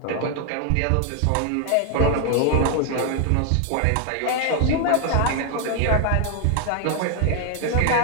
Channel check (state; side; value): different; both; correlation 0.00